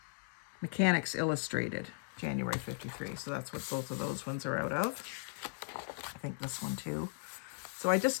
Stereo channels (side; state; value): right; silent; digital silence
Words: Mechanics Illustrated, January 53. So that's what both of those ones are out of. I think this one too. So I